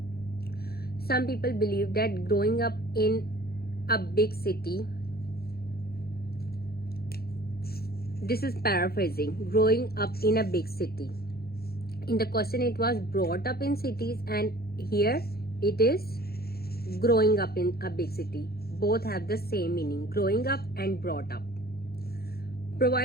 Some people believe that growing up in a big city, this is paraphrasing, growing up in a big city. In the question it was brought up in cities, and here it is growing up in a big city. Both have the same meaning, growing up and brought up.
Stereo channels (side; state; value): right; late; 0.45 ms